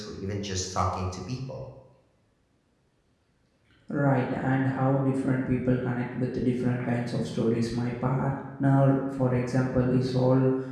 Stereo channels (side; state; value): both; identical; correlation 1.00